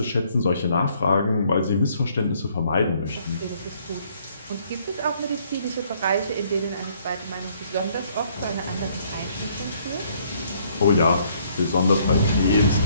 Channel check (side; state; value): both; inverted; correlation -0.65